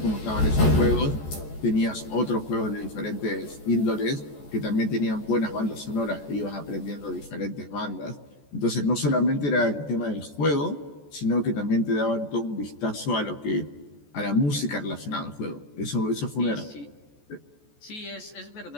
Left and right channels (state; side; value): late; right; 14 ms